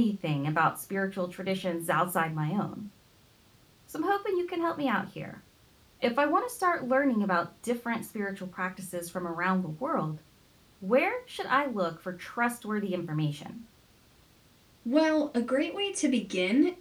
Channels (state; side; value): identical; both; correlation 1.00